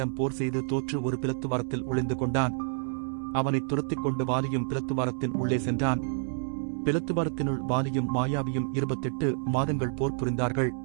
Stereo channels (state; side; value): silent; left; digital silence